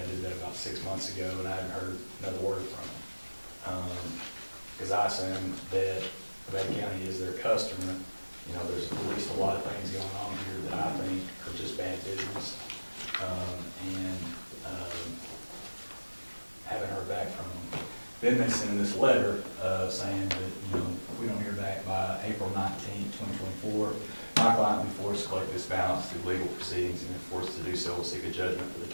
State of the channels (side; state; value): both; inverted; correlation -1.00